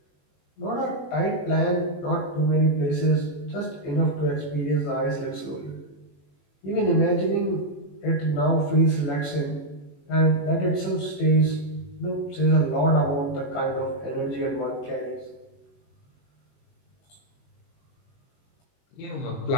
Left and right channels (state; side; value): late; right; 21 ms